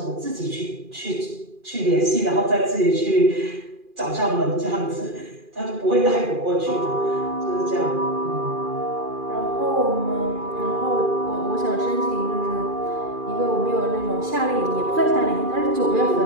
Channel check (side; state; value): left; late; 2.4 ms